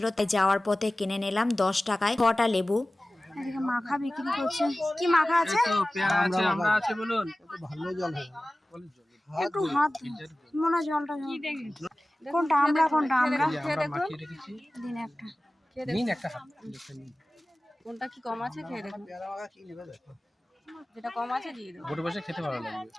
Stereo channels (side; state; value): both; normal; correlation 0.97